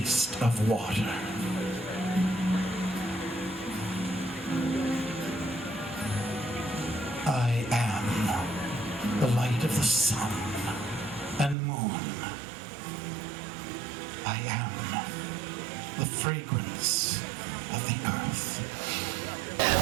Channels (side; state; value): left; drops out; at 11.6 s